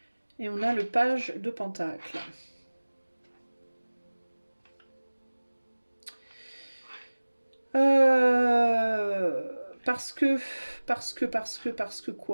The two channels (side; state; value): both; inverted; correlation -1.00